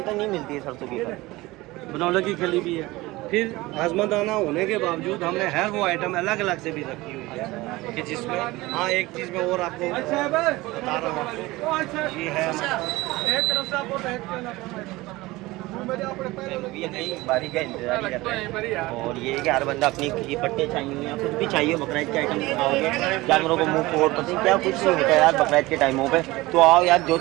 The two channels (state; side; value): quieter; left; 20.1 dB